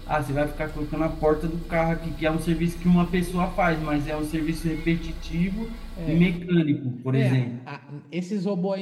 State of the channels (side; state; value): both; identical; correlation 1.00